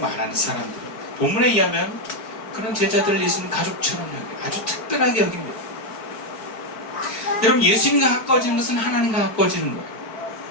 사람들. 본문에 의하면 그런 제자들을 예수님 가족처럼 아주 특별하게 여깁니다. 여러분, 예수님과 가까워지는 것은 하나님과 가까워지는 거예요.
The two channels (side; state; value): right; late; 4.5 ms